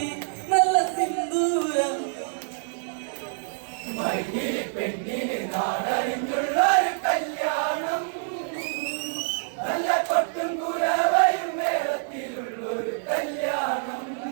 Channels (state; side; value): silent; left; digital silence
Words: നല്ല സിന്ദൂരം. മൈതിലി പെണ്ണിനെ കാടറിഞ്ഞൊരു കല്യാണം, നല്ല കൊട്ടും കുലാവയും മേളത്തിലുള്ളൊരു കല്യാണം.